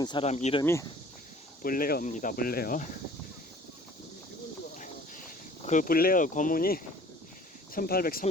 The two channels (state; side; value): normal; both; correlation 0.51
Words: 사람 이름이 블레어입니다. 블레어. 그 블레어 고문이